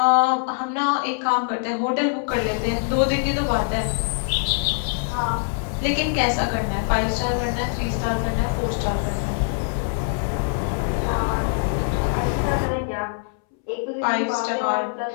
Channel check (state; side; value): silent; right; 63 dB below the other